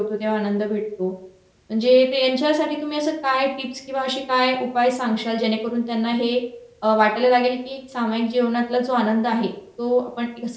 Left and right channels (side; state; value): both; identical; correlation 1.00